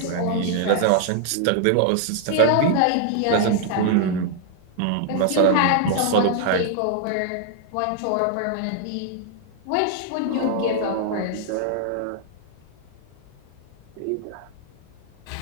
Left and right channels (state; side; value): different; both; correlation 0.00